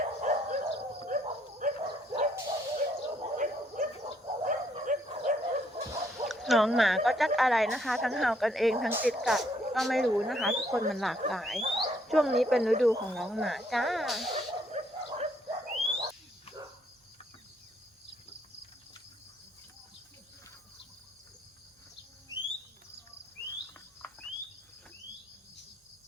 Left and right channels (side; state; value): both; normal; correlation 0.70